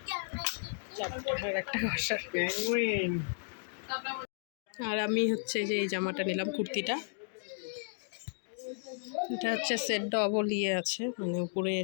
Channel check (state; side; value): silent; right; digital silence